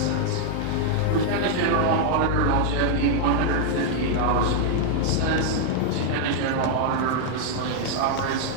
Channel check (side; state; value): both; different; correlation 0.00